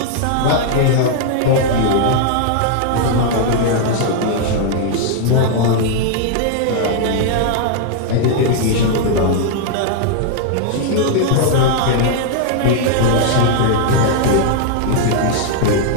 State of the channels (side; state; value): both; different; correlation 0.00